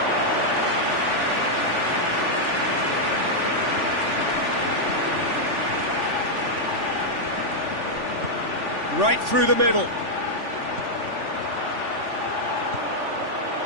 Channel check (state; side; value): late; left; 3.5 ms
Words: Right through the middle.